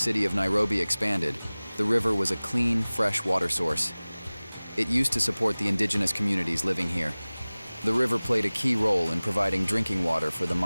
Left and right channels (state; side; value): inverted; both; correlation -0.99